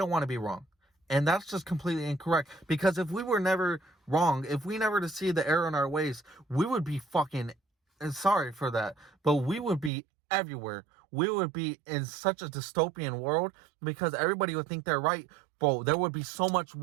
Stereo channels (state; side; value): drops out; left; at 9.9 s